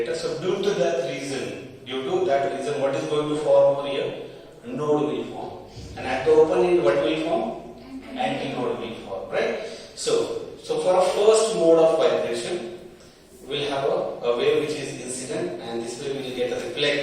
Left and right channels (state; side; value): identical; both; correlation 1.00